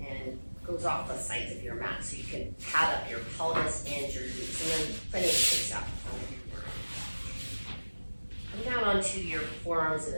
and goes off the sides of your mat so you can pad up your pelvis and your glutes, and then plenty of space out in front of your mat. Come down onto your forearms in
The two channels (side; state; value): both; inverted; correlation -1.00